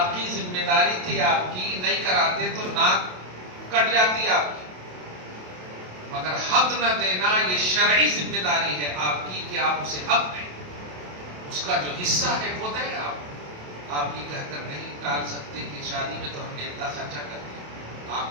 ذمہ داری تھی آپ کی، نہیں کراتے تو ناک کٹ جاتی آپ کی. مگر حق نہ دینا یہ شرعی ذمہ داری ہے آپ کی کہ آپ اسے حق دیں. اس کا جو حصہ ہے وہ دیں آپ. آپ یہ کہہ کر نہیں ٹال سکتے کہ شادی میں تو ہم نے اتنا خرچہ کر دیا.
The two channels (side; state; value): left; late; 27 ms